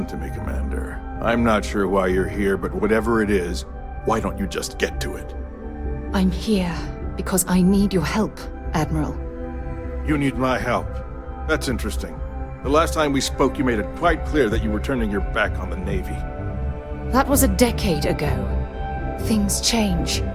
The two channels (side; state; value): both; identical; correlation 1.00